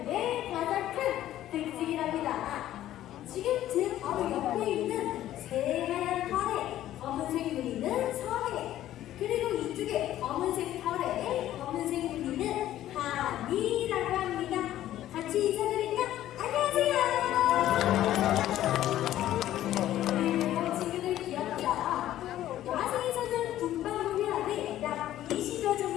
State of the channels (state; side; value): quieter; right; 13.1 dB